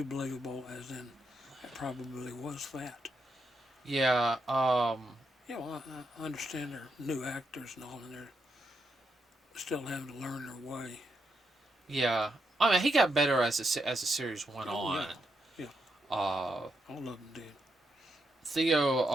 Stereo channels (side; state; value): both; normal; correlation 0.82